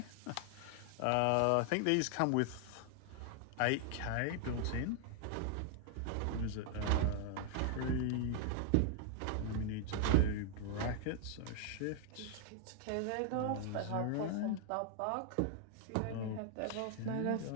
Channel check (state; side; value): different; both; correlation 0.00